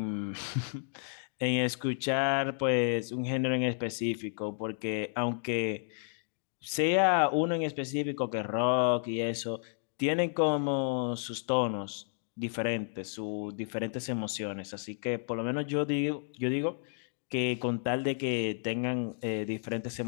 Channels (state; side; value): silent; right; digital silence